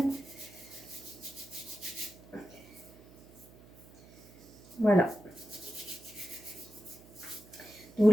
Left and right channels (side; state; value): right; noise; hum, 22 dB below the sound